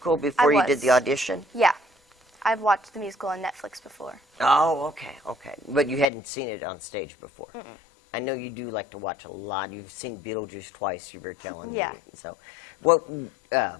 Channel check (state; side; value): drops out; right; at 6.1 s